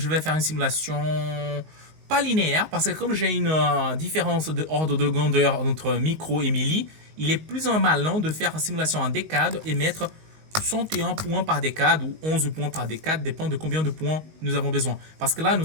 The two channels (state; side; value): late; left; 19 ms